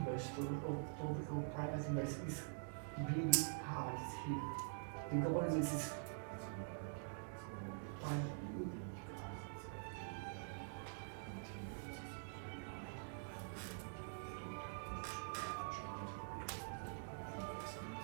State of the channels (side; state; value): left; silent; digital silence